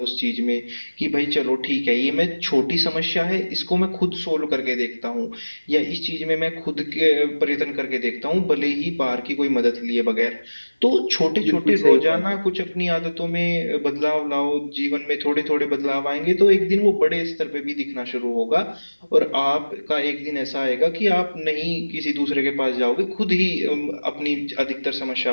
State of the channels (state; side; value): inverted; both; correlation -1.00